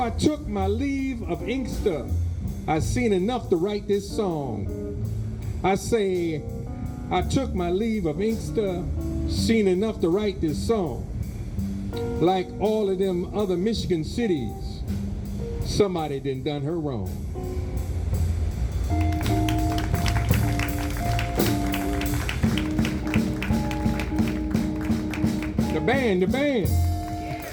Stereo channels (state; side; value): identical; both; correlation 1.00